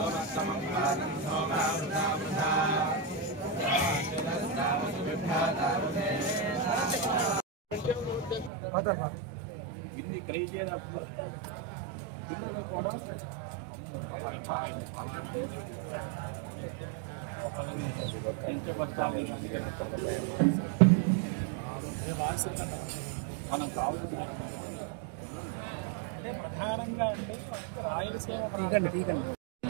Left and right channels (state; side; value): drops out; left; at 8.5 s